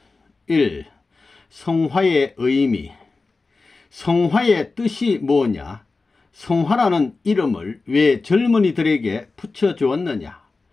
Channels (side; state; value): right; quieter; 3.8 dB